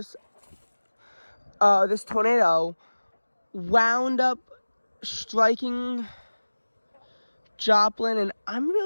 this tornado wound up striking Joplin, and I'm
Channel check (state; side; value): inverted; both; correlation -1.00